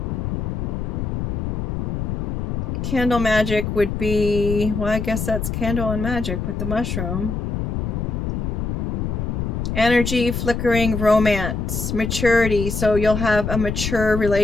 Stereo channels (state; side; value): noise; left; rumble, 2 dB below the sound